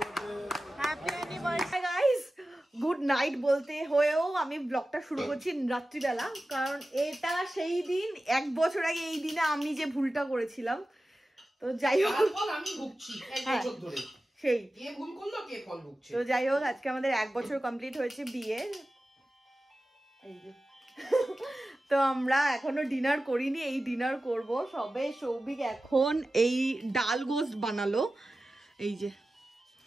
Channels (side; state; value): both; normal; correlation 0.95